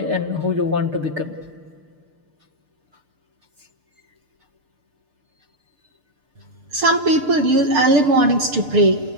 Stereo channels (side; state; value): left; late; 6.7 ms